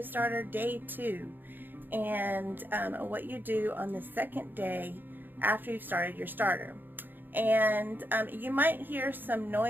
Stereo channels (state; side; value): late; left; 0.092 ms